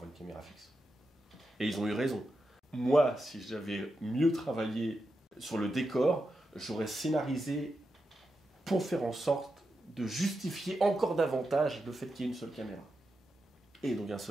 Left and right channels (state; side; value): normal; both; correlation 0.88